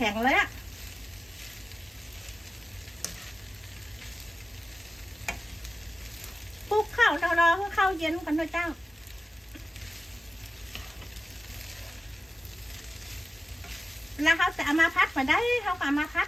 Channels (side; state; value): both; normal; correlation 0.95